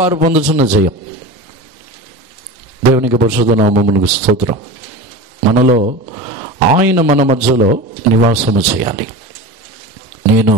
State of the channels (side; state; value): both; normal; correlation 0.29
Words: వారు పొందుతున్న జయం. దేవునికి పరిశుద్ధ నామమునకు స్తోత్రం. మనలో ఆయన మన మధ్యలో నివాసము చేయాలి. నేను